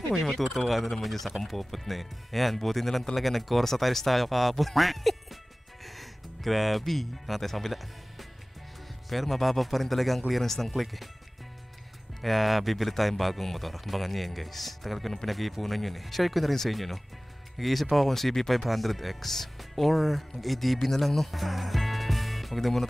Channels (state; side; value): normal; both; correlation 0.98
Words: May matutuwa na naman yun sa Kampopot na eh. Ayan, buti na lang talaga nag-Corsa tiles tayo kahapon. Grabe. Nakatay sa kabila. Pero mababa pa rin talaga ang clearance ng click eh. Kaya bibili tayong bagong motor. Abangan nyo yan guys. Tagal ko nung pinag-iipunan yun eh. Share ko na rin sa inyo no. Nag-iisip ako kung CB500X or mag-ADB na lang no. Huwag na muna